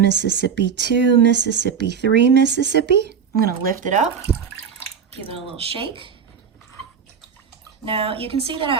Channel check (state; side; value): quieter; left; 6.9 dB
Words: Mississippi, 2 Mississippi, 3 Mississippi. I'm gonna lift it up, give it a little shake. Now you can see that